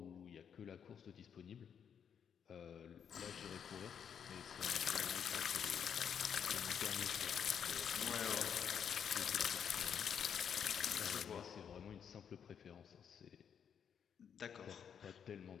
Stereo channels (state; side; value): quieter; right; 7.8 dB